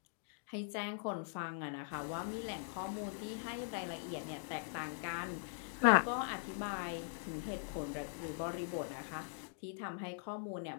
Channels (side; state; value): right; silent; digital silence